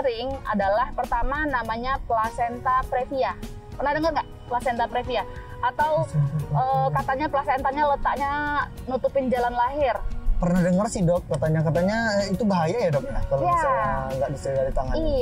adalah pertama namanya placenta previa. Pernah dengar nggak placenta previa? Atau katanya plasentanya letaknya nutupin jalan lahir. Pernah dengar sih dok, katanya itu bahaya ya dok ya kalau misalnya nggak disegera ditangani.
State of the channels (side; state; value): both; identical; correlation 1.00